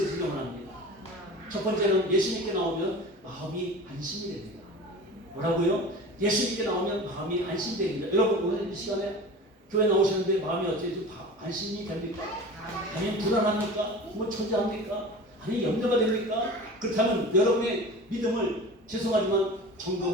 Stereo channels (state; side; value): normal; both; correlation 0.36